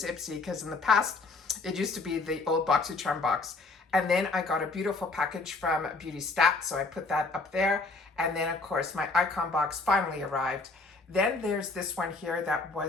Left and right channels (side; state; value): right; quieter; 3.6 dB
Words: Ipsy, because in the past, it used to be the old BoxyCharm box. And then I got a beautiful package from Beauty Stat, so I put that up there. And then, of course, my icon box finally arrived. Then there's this one here that